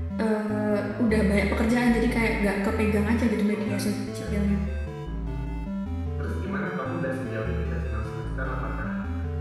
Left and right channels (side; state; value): both; identical; correlation 1.00